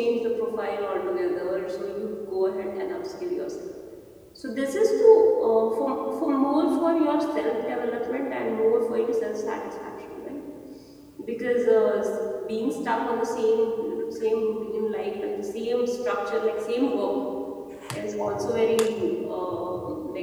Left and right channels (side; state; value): both; identical; correlation 1.00